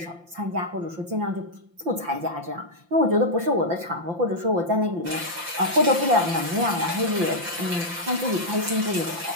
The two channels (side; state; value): left; late; 5.8 ms